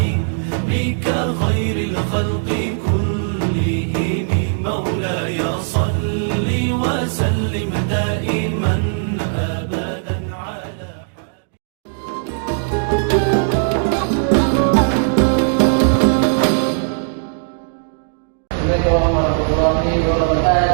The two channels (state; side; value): silent; left; digital silence